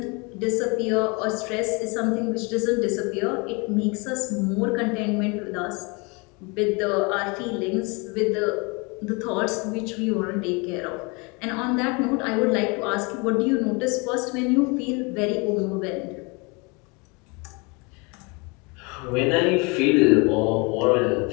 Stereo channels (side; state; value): right; quieter; 29.4 dB